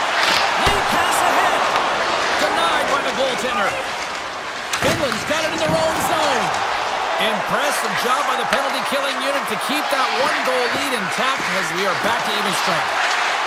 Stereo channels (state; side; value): identical; both; correlation 1.00